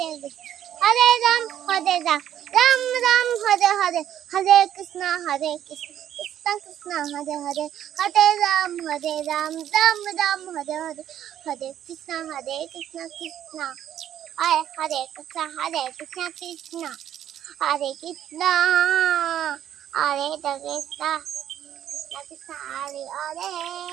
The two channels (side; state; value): left; quieter; 10.8 dB